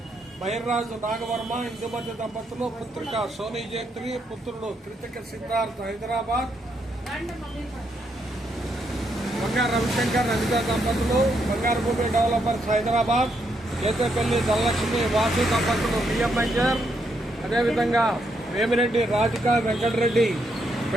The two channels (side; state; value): both; normal; correlation 0.78